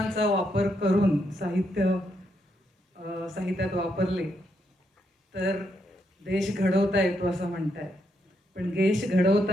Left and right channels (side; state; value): both; normal; correlation 0.78